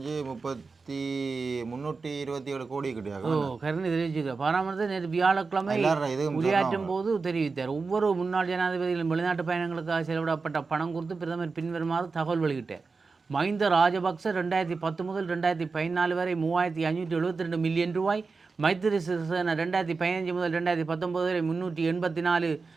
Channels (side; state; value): left; quieter; 4.4 dB